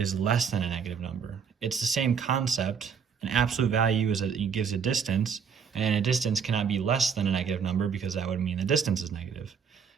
less than a negative number. It's the same concept. An absolute value it gives a distance, and a distance cannot be less than a negative number because that would mean the distance is negative.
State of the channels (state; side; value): quieter; left; 6.7 dB